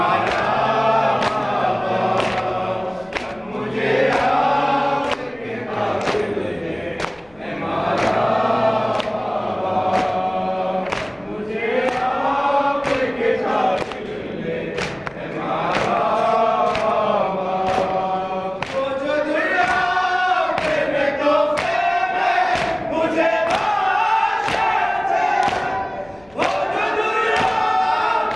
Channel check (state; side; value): noise; left; rumble, 29 dB below the sound